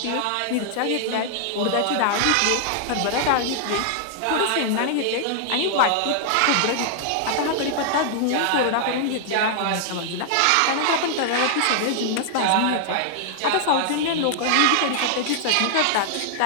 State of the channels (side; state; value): both; different; correlation -0.01